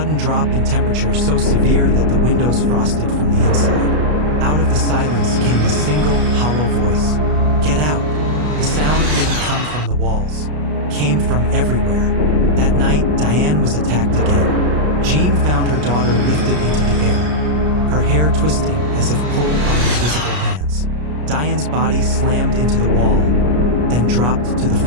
drop in temperature so severe that the windows frosted from the inside. Out of the silence came a single, hollow voice. "Get out!" The sound didn't come from the walls. Came from everywhere. That night, Diane was attacked again. Jean found her daughter lifted into the air, her hair twisting as if pulled by invisible hands. Diane's body slammed into the wall, then dropped to the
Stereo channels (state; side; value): late; left; 33 ms